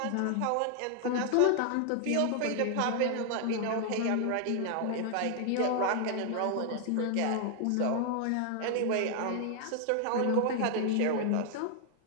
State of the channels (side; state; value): both; different; correlation 0.00